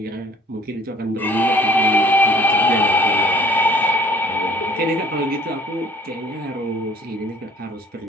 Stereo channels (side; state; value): both; normal; correlation 0.55